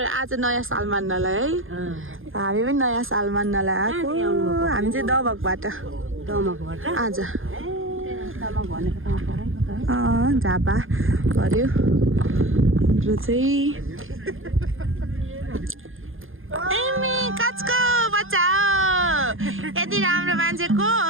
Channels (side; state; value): left; late; 0.59 ms